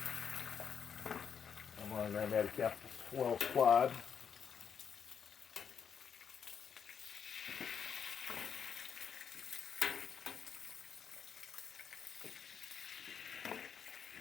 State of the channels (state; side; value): quieter; right; 7.1 dB